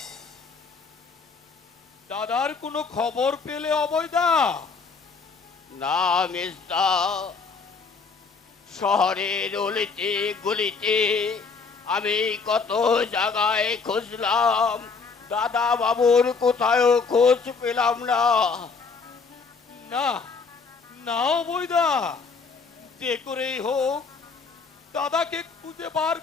দাদার কোনো খবর পেলে অবৈদা? না মেজদা, শহরের অলিতে গলিতে আমি কত জায়গায় খুঁজলাম, দাদা বাবুর কোথাও খোঁজ পেলাম না। না না অবৈদা, যে করেই হোক দাদাকে খুঁজে বার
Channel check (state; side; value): quieter; right; 4.9 dB